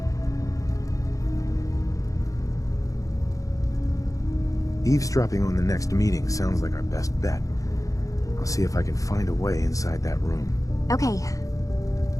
Eavesdropping on the next meeting sounds like our best bet. I'll see if I can find a way inside that room. Okay.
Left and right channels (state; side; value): late; right; 0.16 ms